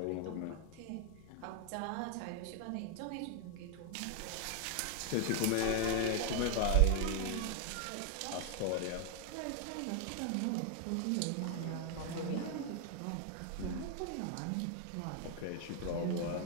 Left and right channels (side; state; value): both; different; correlation 0.00